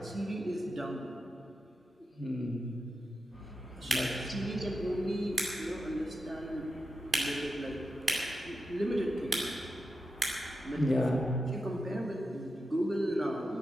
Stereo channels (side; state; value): both; normal; correlation 0.89